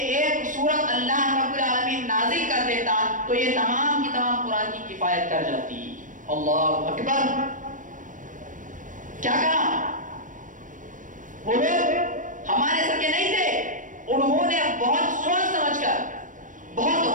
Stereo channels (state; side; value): late; left; 0.38 ms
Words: ایک سورت اللہ رب العالمین نازل کر دیتا تو یہ تمام کی تمام قرآن کی کفایت کر جاتی۔ اللہ اکبر! کیا کہا؟ وہ لوگ ہمارے سر کے نہیں تھے، انہوں نے بہت سوچ سمجھ کر، بہت